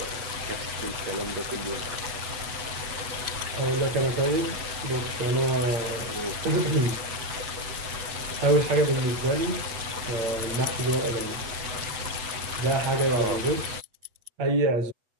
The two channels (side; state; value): left; late; 8.0 ms